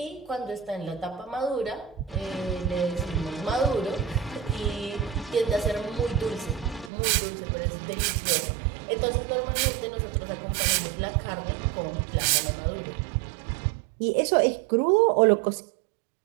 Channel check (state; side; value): drops out; left; at 6.9 s